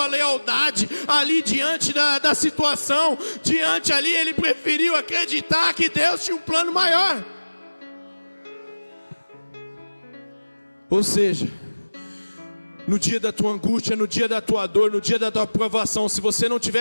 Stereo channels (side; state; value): both; inverted; correlation -1.00